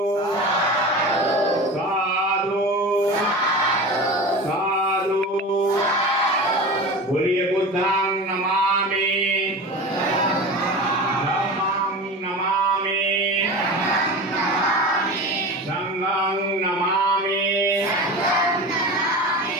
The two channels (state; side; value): normal; both; correlation 0.30